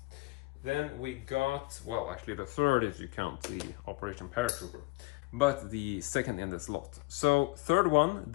Then we got, well, actually the third if you count the Operation Paratrooper, but the second in this lot. So third one,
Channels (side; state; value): right; quieter; 24.7 dB